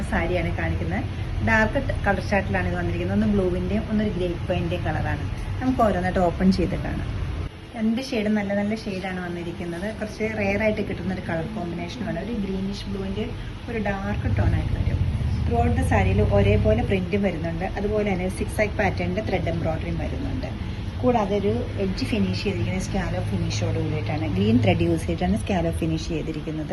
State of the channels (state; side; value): identical; both; correlation 1.00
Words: സാരിയാണ് കാണിക്കുന്നത്. ഡാർക്ക് കളർ ചാർട്ടിലാണ് ഇത് വന്നിരിക്കുന്നത്. ഒന്ന് ബ്ലൂവിന്റെയും ഒന്നൊരു ഗ്രേപ്പ് വൈൻ്റെയും കളറാണ്. നമുക്ക് ഓരോന്നായിട്ട് ഓപ്പൺ ചെയ്ത് കാണാം. രണ്ട് ഷെയ്ഡ് നല്ല നല്ല ഷെയ്ഡാണ് വന്നിരിക്കുന്നത്. കുറച്ച് റെയർ ആയിട്ട് കിട്ടുന്ന ഒരു കളർ കോമ്പിനേഷനുമാണ്. ഒരു ഗ്രീനിഷ് ബ്ലൂവിന്റെ ഒരു ഡാർക്ക് ടോൺ ആയിട്ട് വരും. ത്രൂ ഔട്ട് ദ സാരിയിൽ ഒരേപോലെ പ്രിന്റും വരുന്നുണ്ട്. അതുപോലെ തന്നെ സിക്സ് ആക്ക് പാറ്റേണിന്റെ ത്രെഡ് എംബ്രോയിഡറിയും വരുന്നുണ്ട്. കൂടാതെ ഒരു എഡ്ജ് ഫിനിഷ് ചെയ്തിരിക്കുന്നത് സ്കാലോ ഫിനിഷോട് കൂടിയിട്ടാണ്. ഗ്രീൻ ത്രെഡ് യൂസ് ചെയ്തിട്ടാണ് സ്കാലോ ഫിനിഷ്